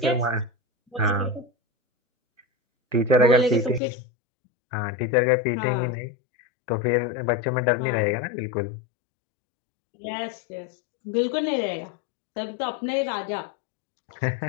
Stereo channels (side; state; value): right; drops out; at 3.8 s